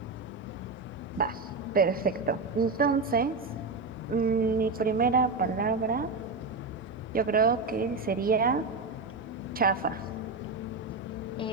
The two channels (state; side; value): quieter; left; 3.7 dB